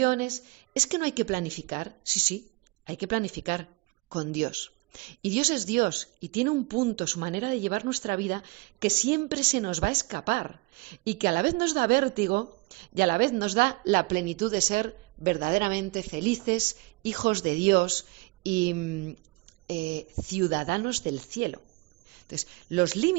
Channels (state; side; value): quieter; left; 24.9 dB